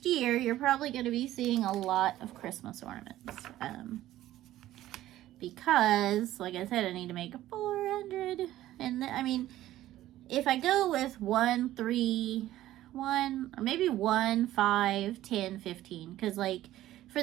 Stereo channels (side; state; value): left; quieter; 14.3 dB